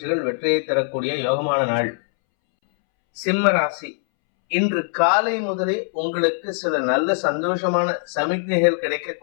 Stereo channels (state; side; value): silent; right; 65 dB below the other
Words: வெற்றியை தரக்கூடிய யோகமான நாள். சிம்ம ராசி. இன்று காலை முதலே உங்களுக்கு சில நல்ல சந்தோஷமான சமிக்ஞைகள்